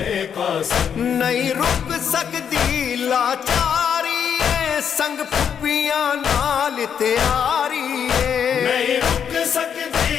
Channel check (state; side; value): quieter; right; 7.9 dB